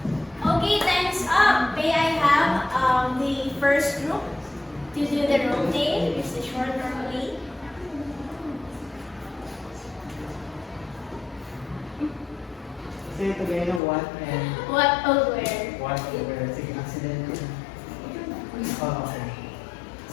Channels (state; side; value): drops out; right; at 13.8 s